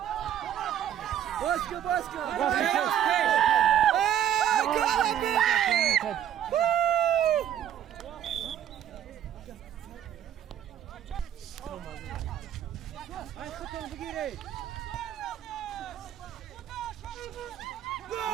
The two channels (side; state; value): left; quieter; 10.4 dB